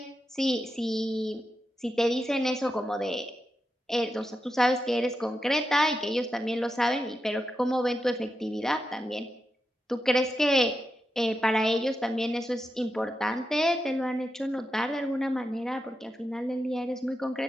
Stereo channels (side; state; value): both; normal; correlation 0.88